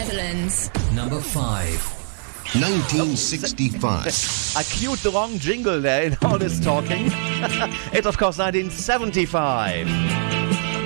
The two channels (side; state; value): left; silent; digital silence